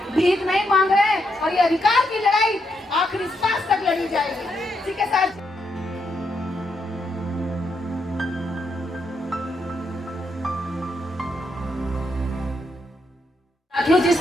भीख नहीं मांग रहे हैं। और ये अधिकार की लड़ाई आखिरी सांस तक लड़ी जाएगी। ठीक है सर। साथियों,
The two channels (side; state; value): both; normal; correlation 0.80